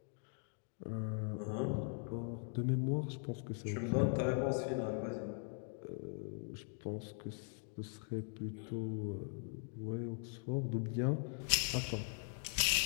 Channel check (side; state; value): right; silent; 51 dB below the other